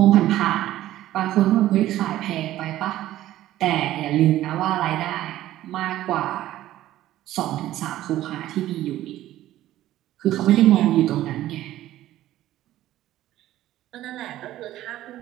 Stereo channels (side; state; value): left; quieter; 14.1 dB